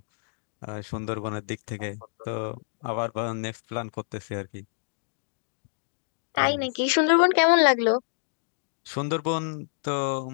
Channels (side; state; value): right; silent; digital silence